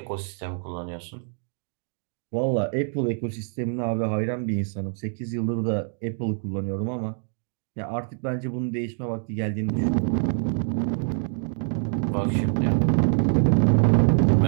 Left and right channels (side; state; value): left; silent; digital silence